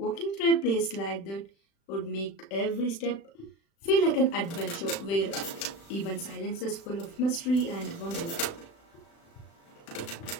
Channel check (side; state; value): right; late; 36 ms